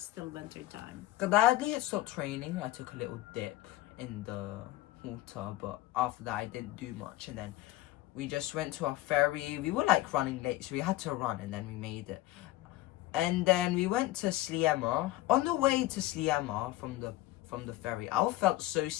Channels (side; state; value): right; quieter; 16.7 dB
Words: still winter time. Gladly it stopped raining. I took a little dip in the water, but after that I didn't do much. And then we just went to our ferry. We were like running late, so we had to run, and then we made it. And then we went to Sliema. On the way to Sliema from the ferry, I felt so